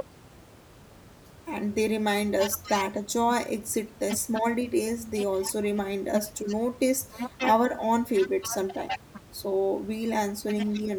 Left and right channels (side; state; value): both; identical; correlation 1.00